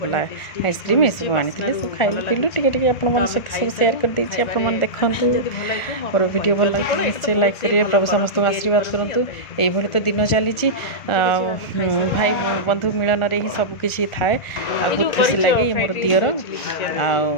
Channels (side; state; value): right; late; 1.4 ms